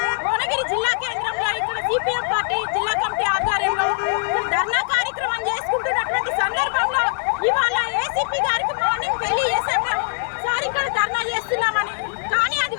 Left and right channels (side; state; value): right; silent; digital silence